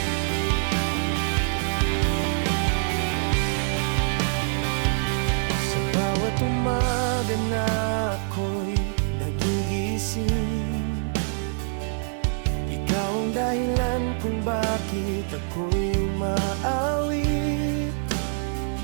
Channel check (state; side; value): silent; left; digital silence